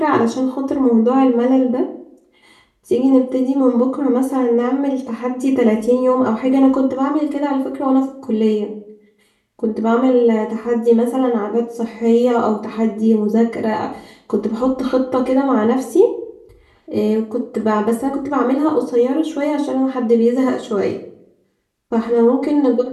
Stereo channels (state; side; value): identical; both; correlation 1.00